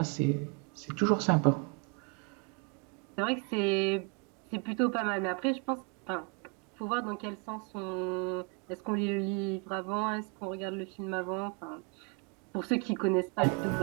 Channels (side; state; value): left; quieter; 32.7 dB